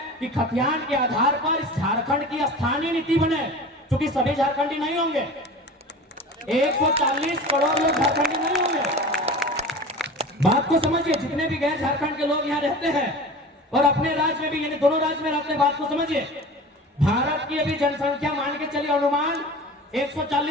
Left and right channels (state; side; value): normal; both; correlation 0.36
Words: कि खतियान के आधार पर इस झारखंड की स्थानीय नीति बने, क्योंकि सभी झारखंडी नहीं होंगे, 140 करोड़ लोग झारखंडी नहीं होंगे। बात को समझिए, जितने भी गैर झारखंड के लोग यहाँ रहते हैं और अपने राज्य में भी, यानी दोनों राज्य में रहते हैं, बात को समझिए। भारत की अभी जनसंख्या मान के चलिए अनुमान